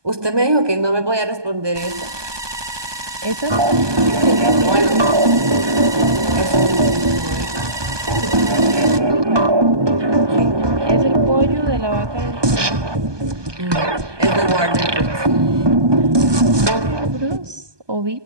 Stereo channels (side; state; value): left; late; 1.2 ms